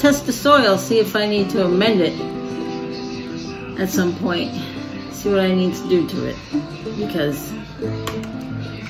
test the soil, see if I need to amend it at some point. See what I need to do to it, because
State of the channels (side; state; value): both; identical; correlation 1.00